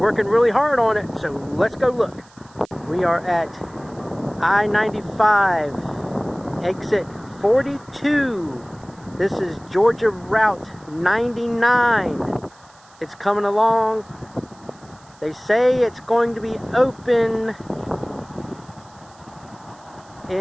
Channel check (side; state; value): right; noise; hiss, 28 dB below the sound